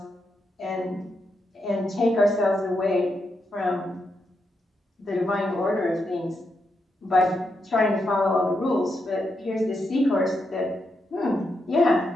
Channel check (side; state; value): both; normal; correlation 0.83